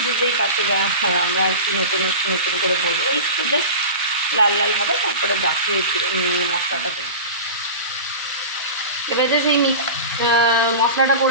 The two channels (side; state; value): both; inverted; correlation -0.30